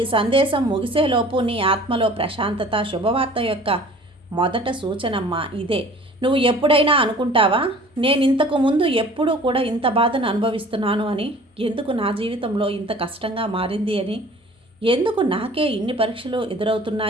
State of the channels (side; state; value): both; normal; correlation 0.48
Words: సందేశం ముగిసేలోపు నీ ఆత్మలో ప్రశాంతత, శుభవార్త యొక్క మొదట సూచనమ్మా ఇదే. నువ్వు ఎప్పుడైనా అనుకుంటావా, నేను ఇంతకు ముందు ఎప్పుడూ కూడా ఇంత బాధను అనుభవిస్తున్నాను అని? ఎందుకు నా జీవితంలో ఇంత కష్టంగా మారింది అని? ఎందుకు నాకే ఇన్ని పరీక్షలు